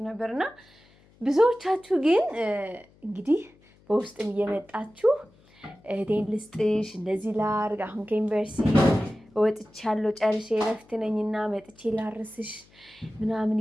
ነበርና ብዙዎቻችሁ ግን እንግዲህ በውስጥም እየመጣችሁ እህቴን ልስጥሽ እንደዚህ ላርግ፣ አሁን ከዩኒቨርሲቲ ወጥቻለሁ ጨርሼ እረፍት ነኝና መጥቼ ላርስሽ ምናምን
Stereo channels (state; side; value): noise; left; hum, 29 dB below the sound